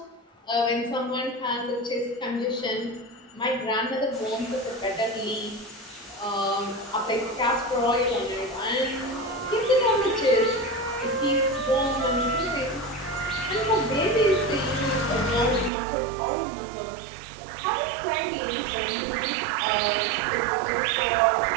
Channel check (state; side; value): drops out; left; at 15.7 s